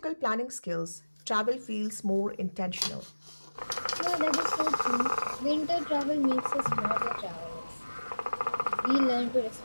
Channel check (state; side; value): inverted; both; correlation -1.00